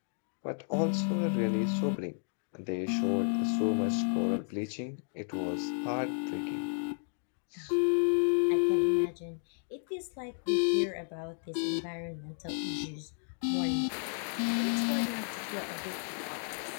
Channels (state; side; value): silent; right; 56 dB below the other